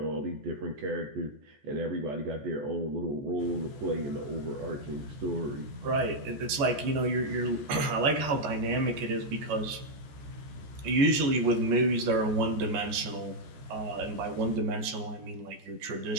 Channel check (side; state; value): left; late; 14 ms